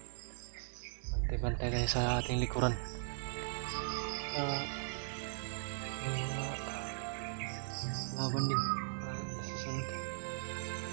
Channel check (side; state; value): left; silent; 52 dB below the other